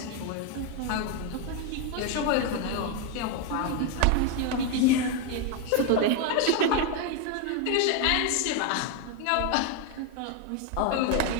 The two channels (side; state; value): both; different; correlation 0.01